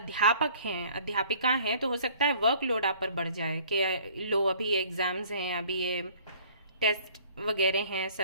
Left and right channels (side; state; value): both; inverted; correlation -0.54